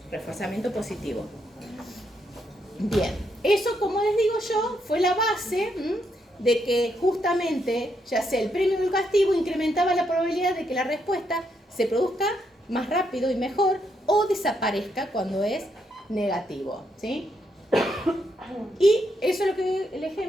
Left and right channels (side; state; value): both; normal; correlation 0.78